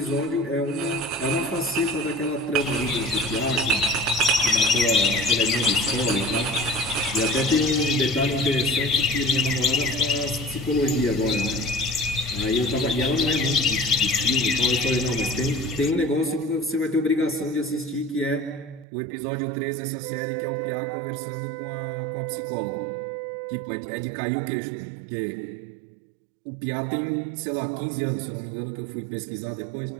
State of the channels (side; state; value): left; drops out; at 18.9 s